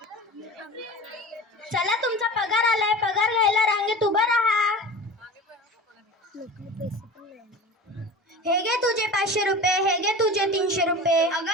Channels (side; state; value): both; normal; correlation 0.35